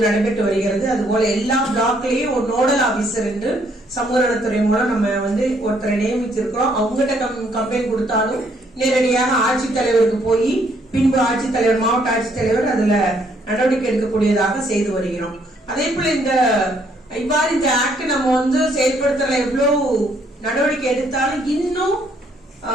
நடைபெற்று வருகிறது. அதுபோல எல்லா பிளாக்லயும் ஒரு நோடல் ஆபீசர் என்று சமூக நலத்துறை மூலம் நம்ம ஒருத்தரை நியமித்திருக்கிறோம். அவங்ககிட்ட கம்ப்ளைண்ட் கொடுத்தாலும் நேரடியாக ஆட்சித்தலைவருக்கு போய் பின்பு ஆட்சித்தலைவர், மாவட்ட ஆட்சித்தலைவர் அதுல நடவடிக்கை எடுக்கக்கூடியதாக செய்து வருகிறோம். அதே போல இவ்வாறு இந்த ஆக்ட் நம்ம செயல்படுத்தல எவ்வளவு நடவடிக்கை எடுத்தாலும் இன்னும்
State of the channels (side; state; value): both; normal; correlation 0.68